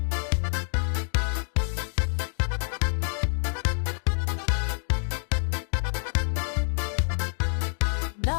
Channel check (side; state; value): right; silent; digital silence